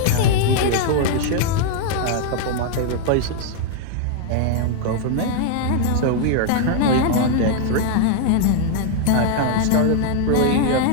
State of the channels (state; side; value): different; both; correlation 0.00